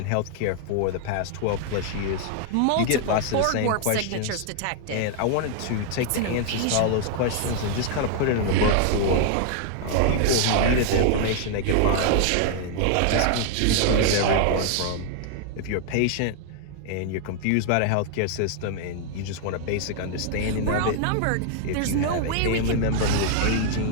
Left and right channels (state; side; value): different; both; correlation 0.00